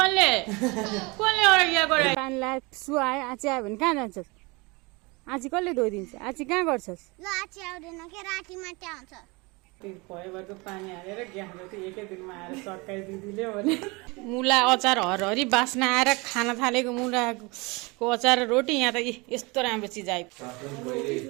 यहाँ गरे पानीलाई सुहाए आची आयो भने कहाँ जान्छस्? आची कसले धोइदिन्छ? आची कहाँ गर्छस्? ल आची आउँदैन के राति मात्रै आउँछ। भयभरको पानी हालेर ग्यास जति एकै दिनमा आएर सर्काइ दिदीले भने मुला अचार हरहरी बास्ना आएर खान थालेको मुलाको अचार रोटी यहाँ त यस्तो राम्रो चिज आयो।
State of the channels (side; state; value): left; quieter; 26.4 dB